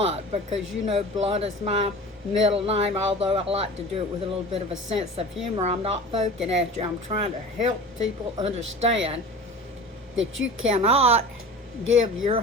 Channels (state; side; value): normal; both; correlation 0.37